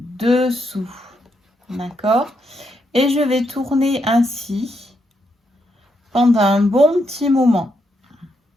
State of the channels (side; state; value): both; normal; correlation 0.79